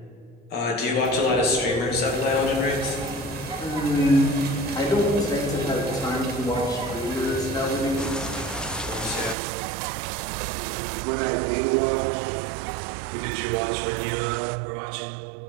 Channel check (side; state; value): left; drops out; at 9.3 s